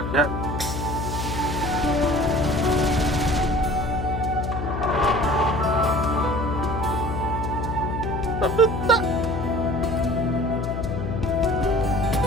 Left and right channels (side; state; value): left; noise; hum, 4 dB below the sound